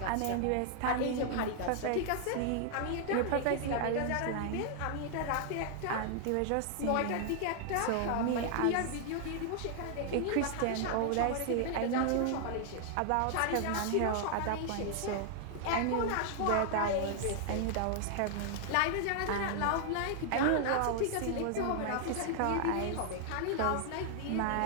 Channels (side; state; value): both; different; correlation 0.00